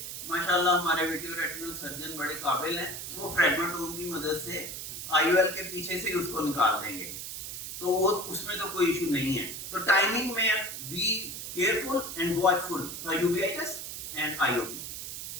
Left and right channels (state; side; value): noise; right; hiss, 7 dB below the sound